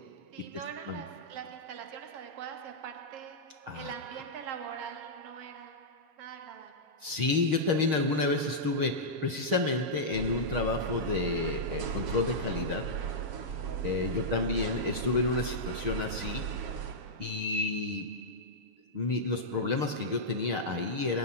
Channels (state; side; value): late; left; 6.5 ms